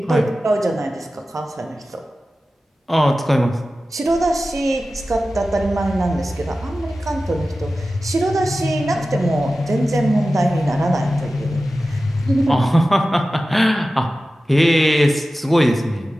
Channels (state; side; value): normal; both; correlation 0.94